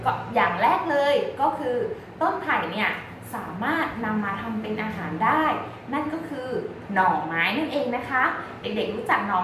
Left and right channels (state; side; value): identical; both; correlation 1.00